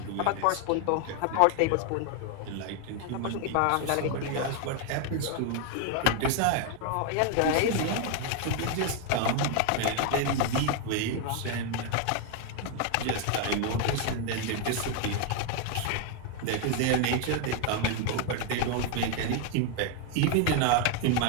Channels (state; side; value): different; both; correlation 0.01